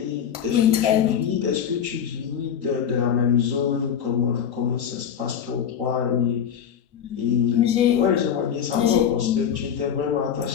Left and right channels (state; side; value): quieter; right; 8.4 dB